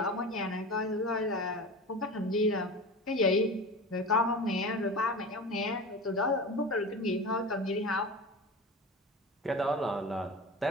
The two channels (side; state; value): both; normal; correlation 0.31